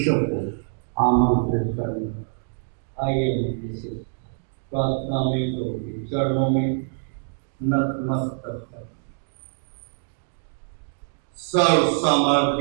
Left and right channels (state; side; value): silent; left; 62 dB below the other